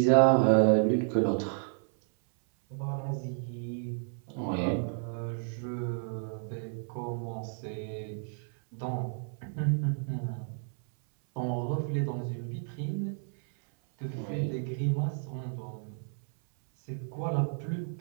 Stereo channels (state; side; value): silent; left; 57 dB below the other